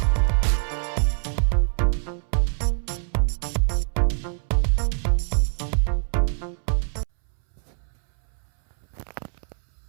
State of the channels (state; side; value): silent; left; 62 dB below the other